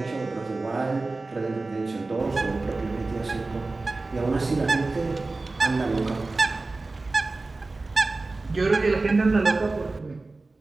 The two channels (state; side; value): quieter; left; 3.4 dB